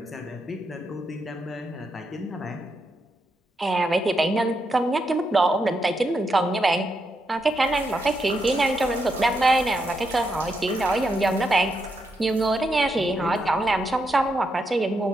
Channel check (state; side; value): normal; both; correlation 0.82